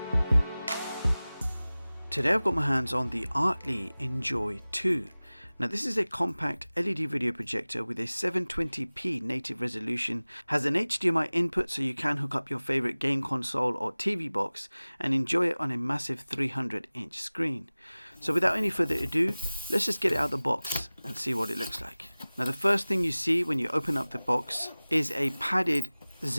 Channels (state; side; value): inverted; both; correlation -0.99